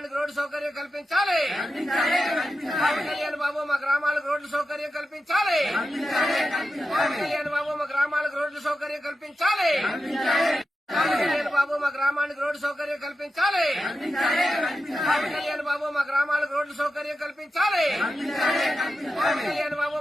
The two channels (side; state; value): both; normal; correlation 0.90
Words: రోడ్డు సౌకర్యం కల్పించాలి. పవన్ కళ్యాణ్ బాబు మా గ్రామాలకు రోడ్డు సౌకర్యం కల్పించాలి. పవన్ కళ్యాణ్ బాబు మా గ్రామాలకు రోడ్డు సౌకర్యం కల్పించాలి. పవన్ కళ్యాణ్ బాబు మా గ్రామానికి రోడ్డు సౌకర్యం కల్పించాలి. పవన్ కళ్యాణ్ బాబు మా గ్రామాలకు రోడ్డు సౌకర్యం కల్పించాలి. పవన్ కళ్యాణ్ బాబు